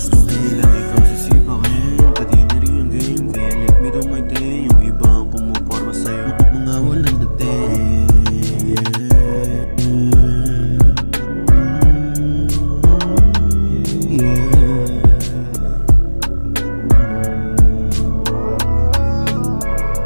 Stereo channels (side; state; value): both; inverted; correlation -1.00